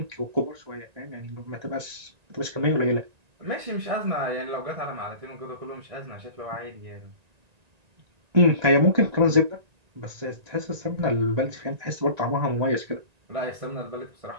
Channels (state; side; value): late; left; 1.9 ms